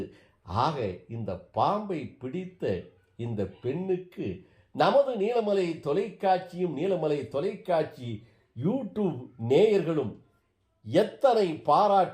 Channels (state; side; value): identical; both; correlation 1.00